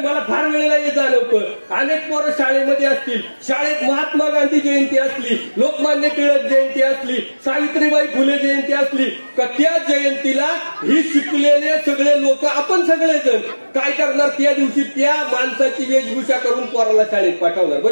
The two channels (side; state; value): both; inverted; correlation -1.00